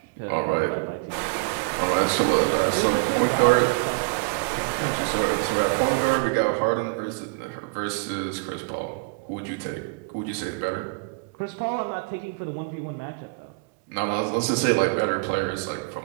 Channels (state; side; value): quieter; left; 30.5 dB